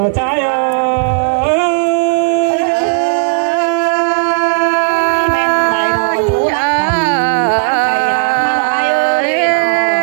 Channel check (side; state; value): left; silent; digital silence